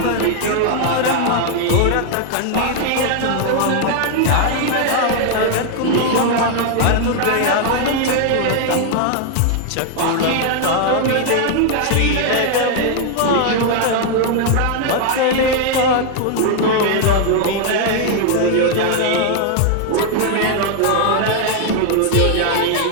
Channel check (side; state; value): both; different; correlation 0.00